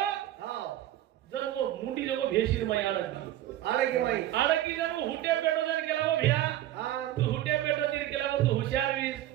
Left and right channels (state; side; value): quieter; left; 13.5 dB